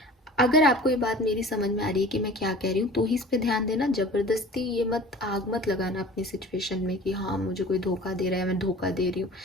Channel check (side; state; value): both; normal; correlation 0.42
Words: अगर आपको ये बात मेरी समझ में आ रही है कि मैं क्या कह रही हूँ, तो ही इस पे ध्यान देना। जबरदस्ती ये आग मत लगाना अपनी सिचुएशन में कि हाँ मुझे कोई धोखा दे रहा है, मैं धोखा दे रही हूँ,